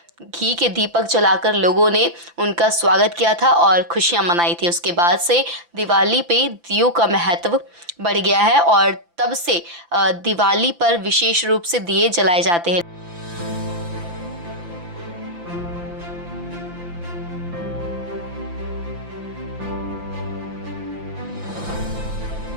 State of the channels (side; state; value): left; late; 5.8 ms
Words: घी के दीपक जलाकर लोगों ने उनका स्वागत किया था और खुशियां मनाई थी। उसके बाद से दिवाली पे दियों का महत्व बढ़ गया है और तब से दिवाली पर विशेष रूप से दिए जलाए जाते हैं।